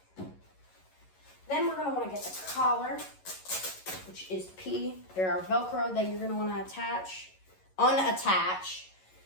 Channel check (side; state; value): right; late; 11 ms